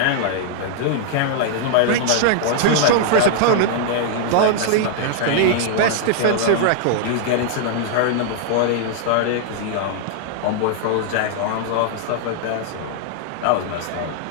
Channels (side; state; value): both; different; correlation -0.01